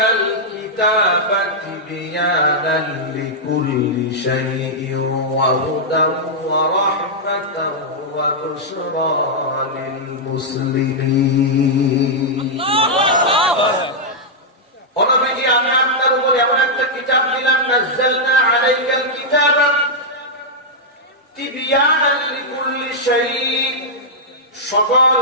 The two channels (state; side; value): normal; both; correlation -0.07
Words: কিতাবা তিবয়ানান লিকুল্লি শাইইন ওয়া হুদান ওয়া রাহমাতান ওয়া বুশরা লিল মুসলিমিন। অনবীজি, আমি আপনার উপর এমন একটা কিতাব দিলাম, নাজ্জালনা আলাইকাল কিতাবা তিবয়ানান লিকুল্লি শাইইন, সকল